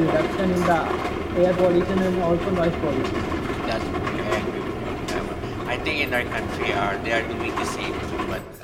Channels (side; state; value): both; identical; correlation 1.00